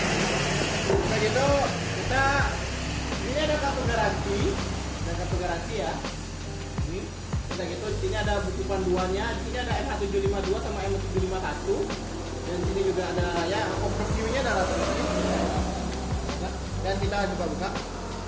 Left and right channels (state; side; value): identical; both; correlation 1.00